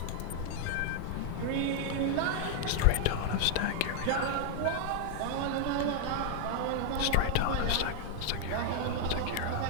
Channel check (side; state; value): both; different; correlation 0.00